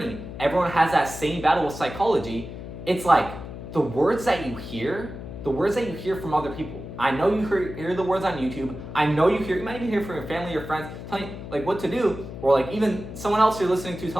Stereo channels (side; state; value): left; noise; hum, 11 dB below the sound